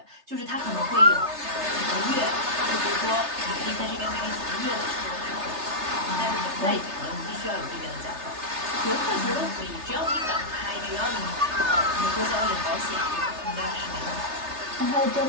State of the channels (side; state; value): left; late; 3.3 ms